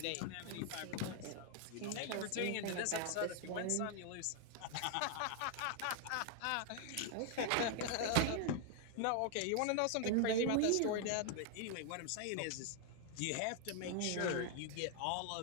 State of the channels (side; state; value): both; different; correlation 0.00